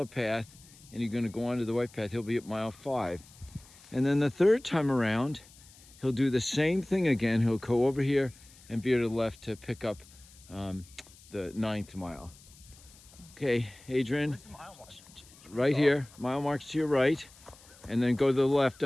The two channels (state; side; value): noise; left; hiss, 23 dB below the sound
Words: path and you're going to go onto the white path. He'll be at mile 5. And then the third time around, he'll do the same thing again. He'll go over here and veer to the left to pick up the 9th mile. Okay, Adrian, Where's the mile mark? right here, mile marks to your right, and then go to the left